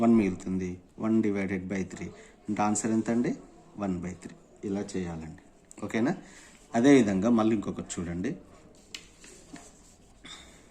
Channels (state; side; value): identical; both; correlation 1.00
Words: 1 మిగులుతుంది. 1 డివైడెడ్ బై 3 అంటే ఆన్సర్ ఎంత అండి, 1/3. ఇలా చేయాలండి. ఓకేనా, అదేవిధంగా మళ్ళీ ఇంకొకటి చూడండి.